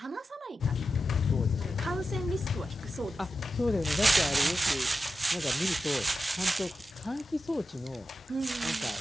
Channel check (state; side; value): normal; both; correlation 0.91